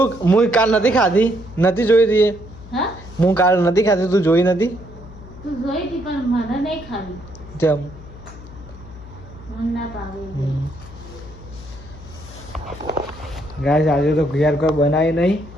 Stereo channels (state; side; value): noise; left; hum, 17 dB below the sound